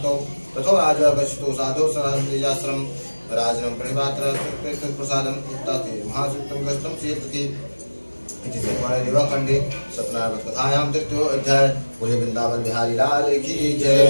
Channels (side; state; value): both; inverted; correlation -1.00